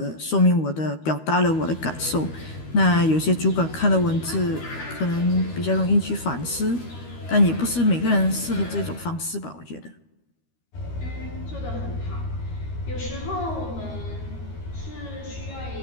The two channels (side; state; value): right; late; 13 ms